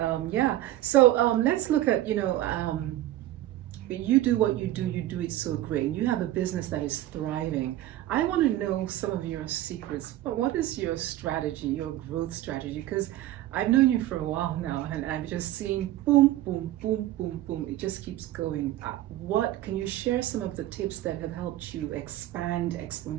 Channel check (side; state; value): left; quieter; 14.5 dB